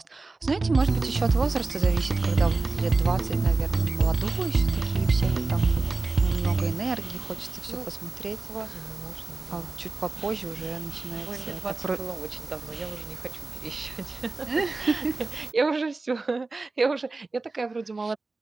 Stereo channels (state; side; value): quieter; left; 3.6 dB